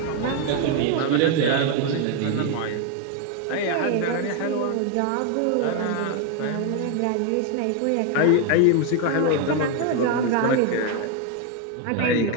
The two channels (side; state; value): both; different; correlation 0.01